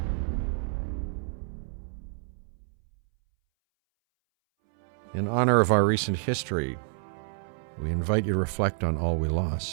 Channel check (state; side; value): silent; left; 59 dB below the other